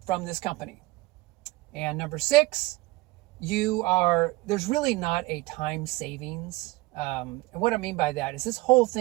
from this company. And number six, there's really not a time savings. And what I mean by that is this whole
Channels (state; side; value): quieter; left; 21.4 dB